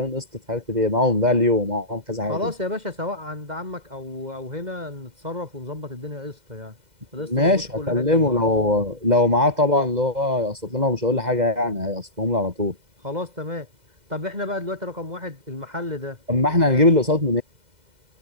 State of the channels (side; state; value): left; late; 2.0 ms